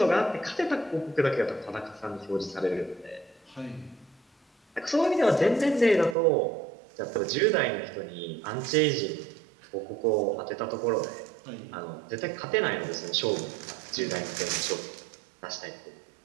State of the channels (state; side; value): drops out; left; at 6.2 s